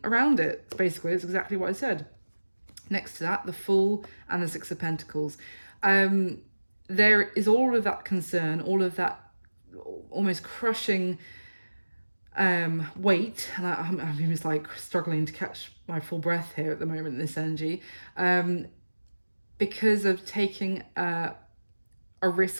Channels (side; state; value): both; inverted; correlation -1.00